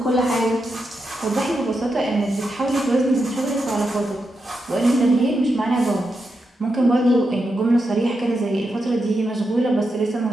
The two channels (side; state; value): both; normal; correlation 0.86